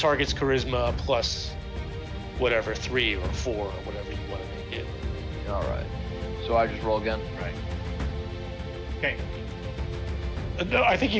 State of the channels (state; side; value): identical; both; correlation 1.00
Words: charisma plus whatever 3 or 4 or whatever you want to make it. All right. So I just roll again. Right. Okay. No, I think